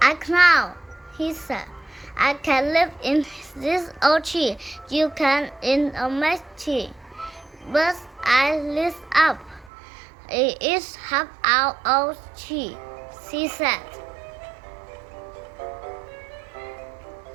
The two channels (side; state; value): left; drops out; at 9.7 s